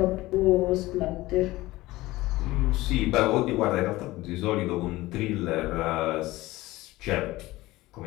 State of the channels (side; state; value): right; quieter; 18.5 dB